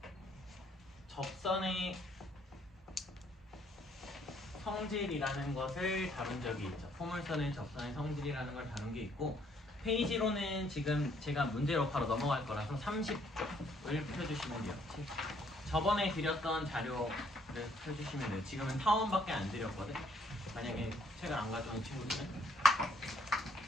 접선의 성질이라는 것을 다룬 적이 있죠. 포물선의 접선의 성질이라는 걸 다룬 게 있고, 페이지로는 지금 제가 문제로 바로 넘어갈 거라서 30쪽을 펴주시면 돼요. 저번에 드렸던 자료를 펴주시면 돼요. 지금은 타원밖에 안 드렸거든. 만약에 책을 안 가져온 친구들은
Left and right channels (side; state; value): both; normal; correlation 0.67